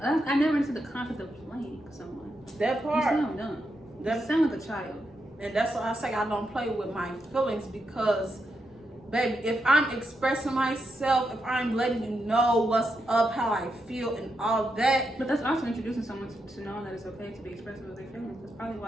I never into the concept of playing someone. That part. You sound dumb. You sound like a child. And that's why I say I don't play with my feelings because, baby, if I'm expressing myself, if I'm letting you know what's up, how I feel, and all that. But that's also introducing someone to know that it's okay to be expressive of their feelings. That's probably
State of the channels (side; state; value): both; normal; correlation 0.84